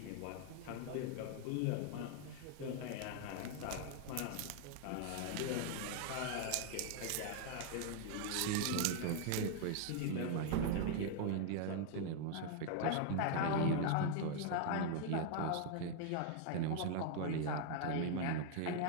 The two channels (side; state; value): both; different; correlation 0.00